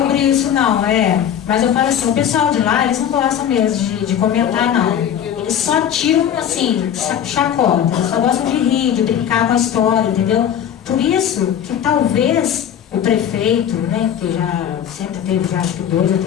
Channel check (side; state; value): right; quieter; 9.4 dB